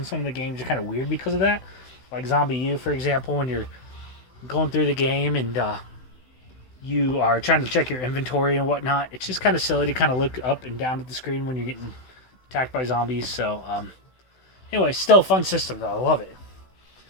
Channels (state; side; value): late; right; 16 ms